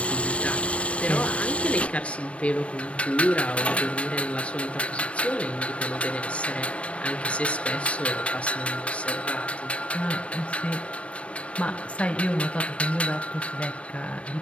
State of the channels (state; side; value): late; right; 0.062 ms